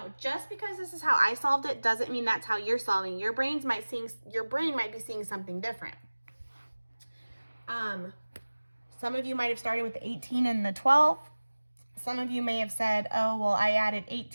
Just because this is how I solved it doesn't mean that's how you're solving. Your brain might be seeing something different. Some of you might have started with the 18 and the 12. Some of you may have said, oh, well, I added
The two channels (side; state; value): both; inverted; correlation -1.00